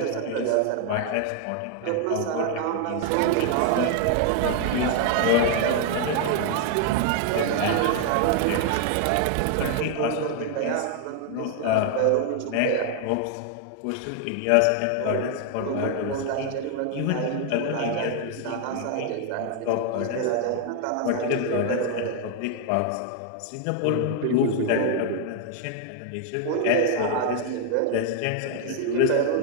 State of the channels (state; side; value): different; both; correlation 0.00